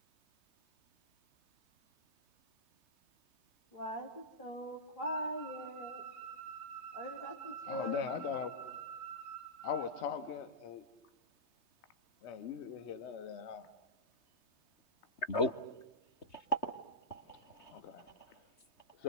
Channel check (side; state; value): right; late; 3.2 ms